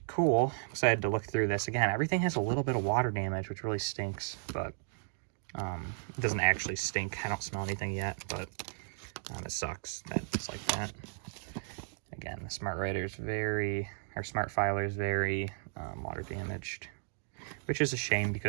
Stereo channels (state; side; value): silent; left; digital silence